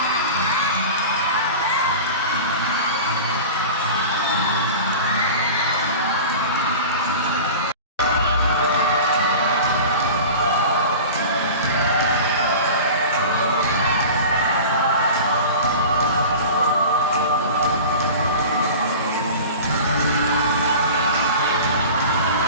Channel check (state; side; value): inverted; both; correlation -0.35